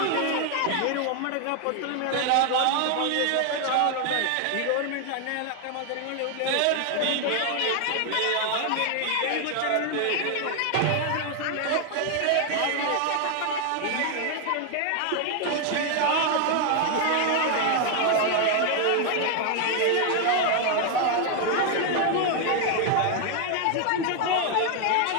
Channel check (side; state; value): both; different; correlation 0.00